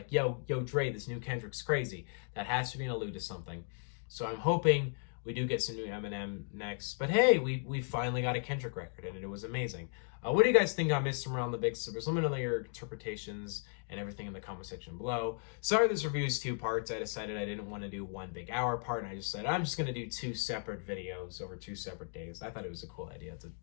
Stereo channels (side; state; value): right; silent; 54 dB below the other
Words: yo Dre, this new Kendrick's crazy. That has to be an allude to something. So I'm hoping we do get some new Eminem next. But hey, we finally got a Kendrick record, and it was amazing. What do you guys think on Mr. Morale and the Big Steppers? Let me know your interpretations and everything in the comment section below. Sorry this review is 2 parts. I decided I didn't want to do one big hour part, and I just said I'm just going to do 2 separate videos over 2 separate days. I thought it was a cool idea to